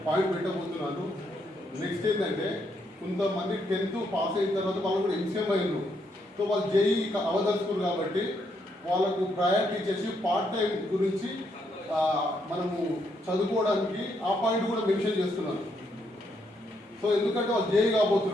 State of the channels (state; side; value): normal; both; correlation 0.76